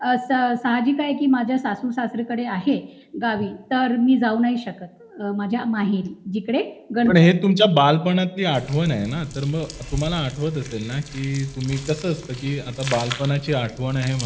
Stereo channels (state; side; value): identical; both; correlation 1.00